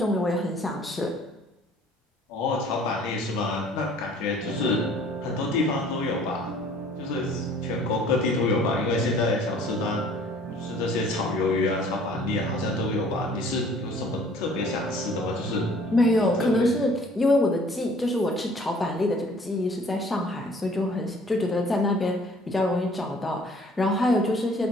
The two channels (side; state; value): both; normal; correlation 0.54